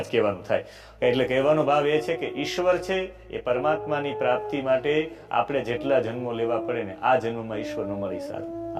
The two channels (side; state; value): both; identical; correlation 1.00